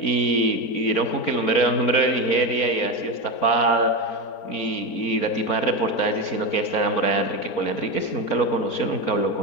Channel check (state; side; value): late; right; 4.4 ms